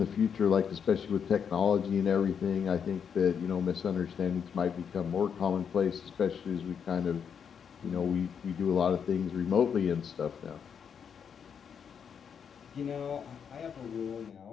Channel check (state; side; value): quieter; right; 7.3 dB